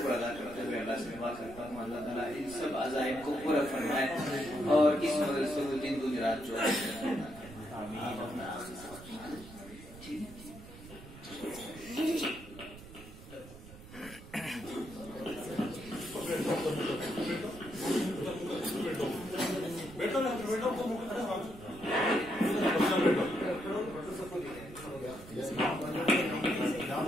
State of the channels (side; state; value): right; noise; rumble, 16 dB below the sound